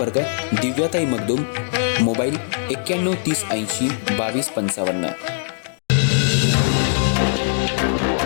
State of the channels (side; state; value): right; silent; digital silence